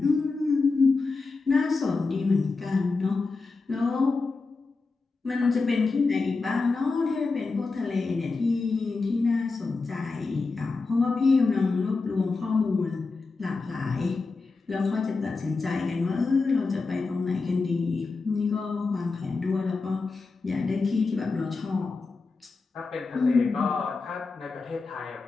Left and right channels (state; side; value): quieter; right; 4.0 dB